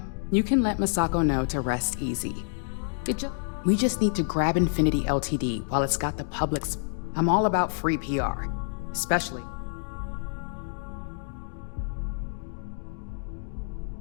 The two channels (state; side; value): silent; right; digital silence